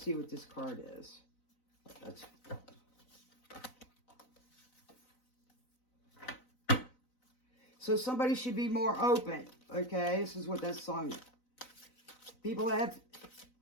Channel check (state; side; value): late; right; 4.0 ms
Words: what this card is. That's... So somebody should be more open. Okay, this is what that song is. People have,